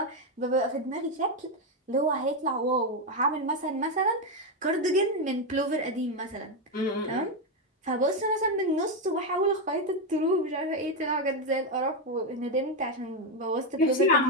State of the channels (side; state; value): both; normal; correlation 0.06